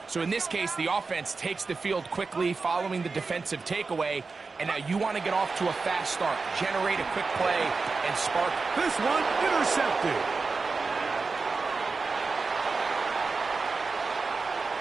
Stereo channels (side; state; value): left; quieter; 4.3 dB